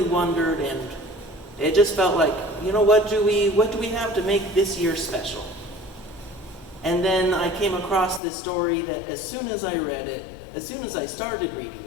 wondered, and it just felt like, you know, what do we have to make this year special? And then I came across this story that as soon as I read it, as soon as I started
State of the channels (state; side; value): drops out; right; at 8.2 s